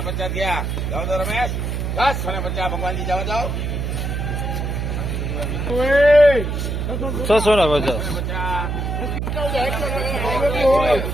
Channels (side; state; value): right; noise; hum, 2 dB below the sound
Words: ગયા. જાઓ તો રમેશ. 650 ભગવાનજી જાઓ જાઓ. 650.